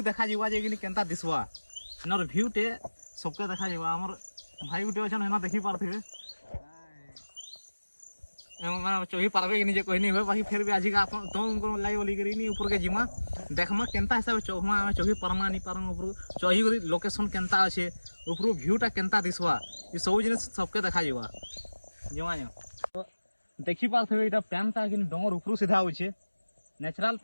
देखा जावा जे केनता दिसवा हेनर भ्यू टे सबके देखा जावा हमर भाई गोटे अच्छा हेना देखी पारे चढ़ी पारबे कि कहनी हुए बाकी फिर भी आज का तुम लगे बोली करी ऊपर के जिमा देखमा केनता हिसाब से चढ़मा चढ़ी पारमा नहीं पारम ऊपर चढ़ी कर लोकेशन केनता अच्छे ऊपर भ्यूटा केनता दिसवा ये सब जिन सबके देखा जावा जमा तो देखी पारे यहाँ पैनटा कि डोंगर ऊपर सीधा होचे नेचुरल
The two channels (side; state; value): both; inverted; correlation -1.00